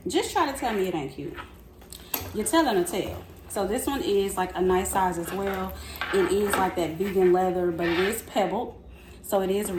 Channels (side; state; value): both; identical; correlation 1.00